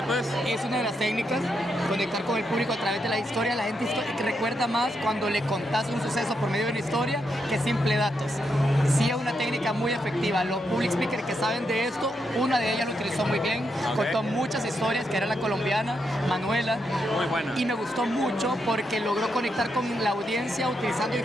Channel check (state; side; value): normal; both; correlation 0.82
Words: es? Es una de las técnicas, conectar con el público a través de la historia. La gente recuerda más cuando le contás un suceso por medio de una historia que simple datos. Sí es una técnica muy efectiva. Los public speakers que saben de esto, una de ellas lo utilizó muy bien, contó muchas historias, que era la colombiana, Manuela. Muy buena. Y me gustó mucho porque logró conectar con la audiencia utilizando